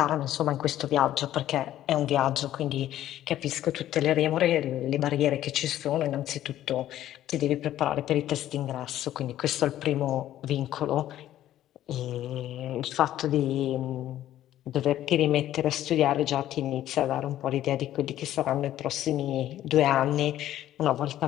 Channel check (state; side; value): quieter; right; 12.7 dB